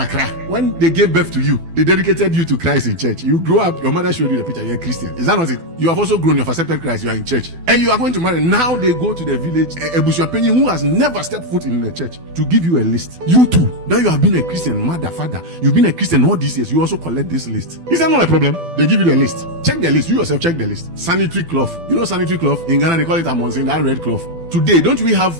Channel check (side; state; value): left; late; 12 ms